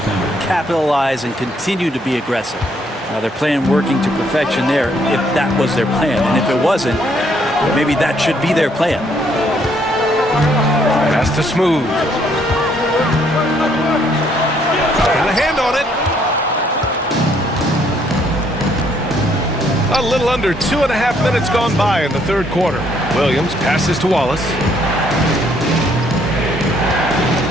capitalize, and continue to be aggressive. They're playing working to perfection there if that was their plan. And if it wasn't, maybe that should be their plan. Pass to Smooth. Got a hand on it. A little under 2.5 minutes gone by in the third quarter. Williams passes to Wallace.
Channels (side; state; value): both; normal; correlation 0.68